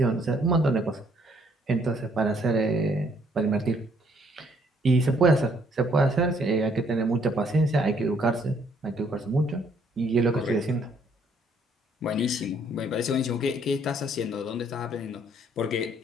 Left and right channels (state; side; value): normal; both; correlation 0.66